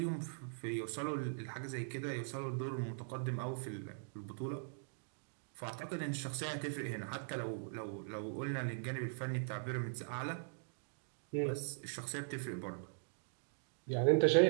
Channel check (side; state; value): left; silent; digital silence